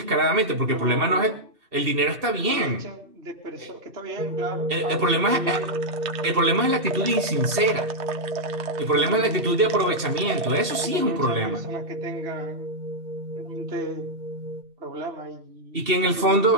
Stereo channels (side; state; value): left; late; 2.7 ms